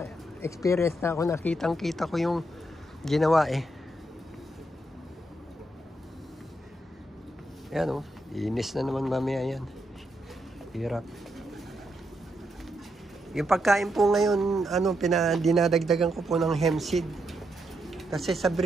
na ako, nakitang-kita ko yung ginawa Yan inis na naman mamaya yan. Hirap. Yung pagkain po ngayon, dinadagdagan ko po ng hemp seed. Kasi sa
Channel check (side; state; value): both; normal; correlation 0.80